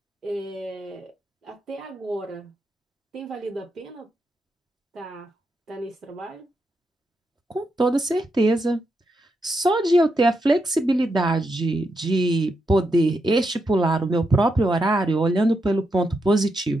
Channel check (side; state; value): both; normal; correlation 0.83